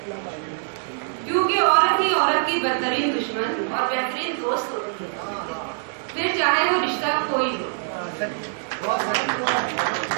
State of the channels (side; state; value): left; silent; digital silence